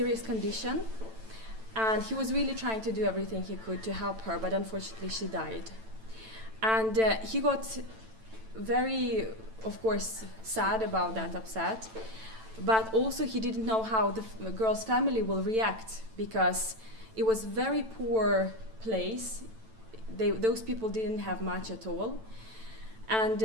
condition, and he was really trying to do everything he could to help her, but unfortunately she died. And he got very, of course, sad about that, upset. But also he didn't know how the girl's family will react, because it was very poor place. Those people didn't have much at all. And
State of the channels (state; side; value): late; left; 9.0 ms